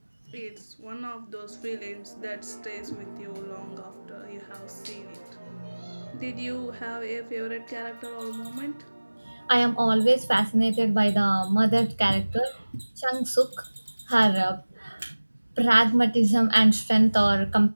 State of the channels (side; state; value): both; inverted; correlation -1.00